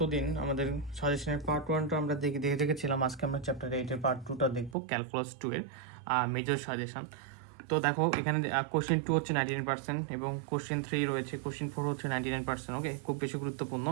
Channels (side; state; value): left; drops out; at 4.8 s